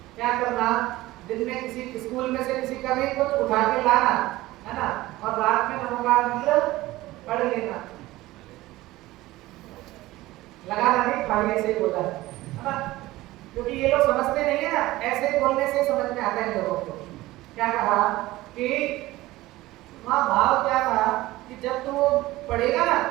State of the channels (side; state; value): left; quieter; 17.9 dB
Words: क्या करना, दिन में किसी स्कूल में से किसी का भी कुछ उठा के लाना है ना, और रात में नमोकार मंत्र पढ़ लेना, लगाना नहीं, खाली ऐसे ही बोला है ना, क्योंकि ये लोग समझते नहीं है ना, ऐसे बोलने से समझ में आता है लोगों को। क्या कहा कि वहाँ भाव क्या कहा कि जब तू वो पढ़ेगा ना,